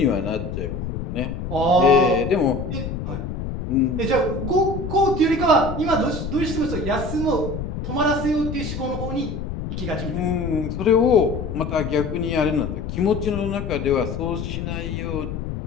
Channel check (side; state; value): left; noise; rumble, 5 dB below the sound